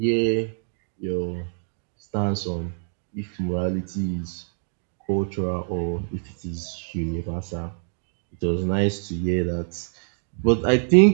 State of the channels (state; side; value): silent; left; digital silence